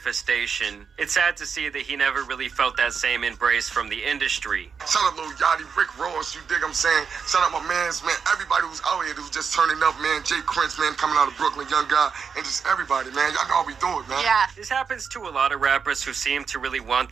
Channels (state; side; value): quieter; left; 6.1 dB